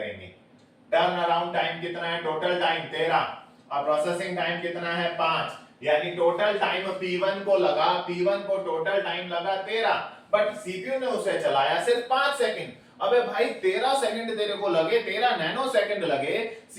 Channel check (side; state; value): both; identical; correlation 1.00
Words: टर्न अराउंड टाइम कितना है? टोटल टाइम 13 और प्रोसेसिंग टाइम कितना है? 5, यानी टोटल टाइम P1 को लगा, P1 को टोटल टाइम लगा 13, बट सीपीयू ने उसे चलाया सिर्फ 5 सेकंड। अबे भाई 13 सेकंड तेरे को लगे, 13 नैनो सेकंड लगे,